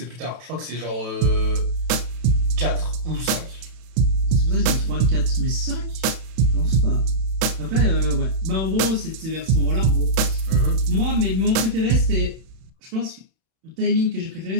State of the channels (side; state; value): left; late; 32 ms